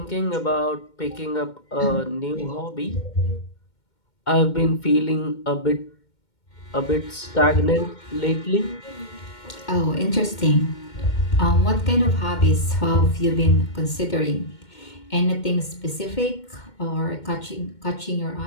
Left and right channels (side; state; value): right; late; 2.2 ms